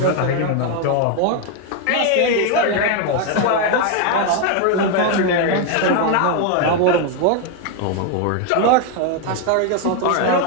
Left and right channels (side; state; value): both; different; correlation 0.01